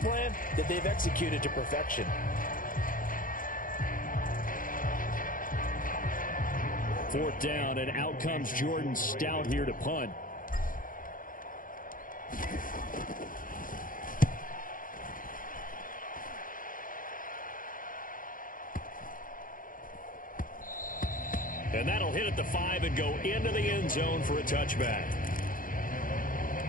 that they've executed to perfection. 4th down, and out comes Jordan Stout here to punt. And that'll hit at the 5 and go into the end zone for a touchback.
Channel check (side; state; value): right; late; 0.40 ms